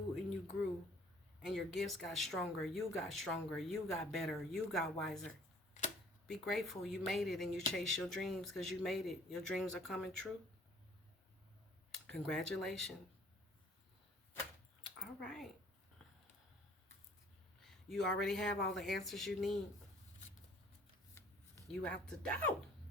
and you grew. And your gifts got stronger. You got stronger. You got better. You got wiser. Be grateful you made it and you chased your dreams because you made it. Your dreams are coming true. Congratulations. All right. You already have all the answers you need. You out the door.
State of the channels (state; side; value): normal; both; correlation 0.55